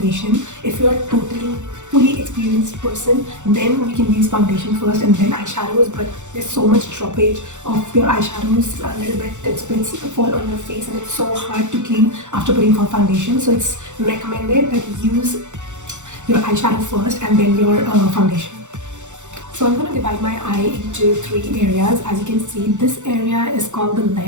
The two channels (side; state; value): left; late; 0.85 ms